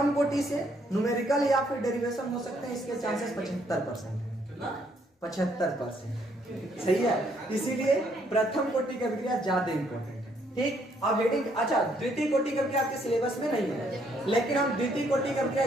कोटि से न्यूमेरिकल या फिर डेरिवेशन हो सकते हैं, इसके चांसेस 75%। 75%। सही है, इसीलिए प्रथम कोटि की अभिक्रिया ज्यादा इंपॉर्टेंट है। ठीक, अब हेडिंग, अच्छा द्वितीय कोटि की अभिक्रिया आपके सिलेबस में नहीं है, लेकिन हम द्वितीय कोटि की अभिक्रिया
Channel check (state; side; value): normal; both; correlation 0.69